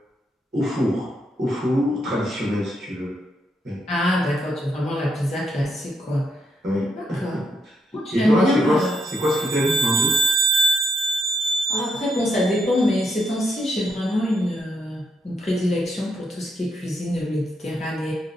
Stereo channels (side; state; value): both; normal; correlation 0.78